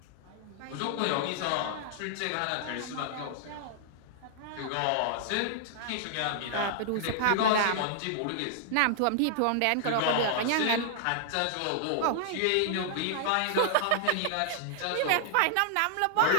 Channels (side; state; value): both; different; correlation -0.01